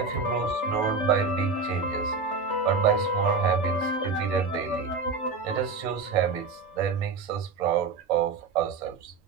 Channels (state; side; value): quieter; left; 4.5 dB